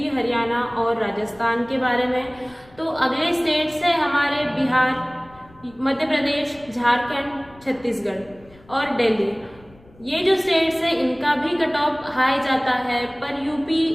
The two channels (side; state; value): left; noise; rumble, 26 dB below the sound